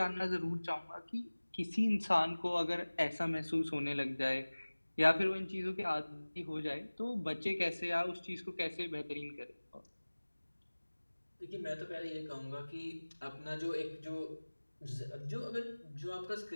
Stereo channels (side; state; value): both; inverted; correlation -1.00